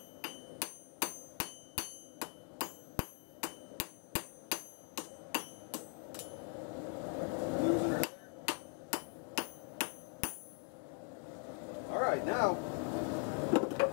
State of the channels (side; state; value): right; quieter; 36.4 dB